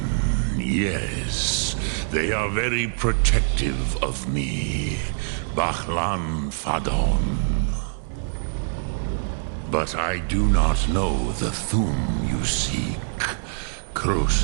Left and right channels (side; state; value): left; silent; digital silence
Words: Yes, they are very protective of me, Bachlan Fadon. But I do not know the Thum you seek.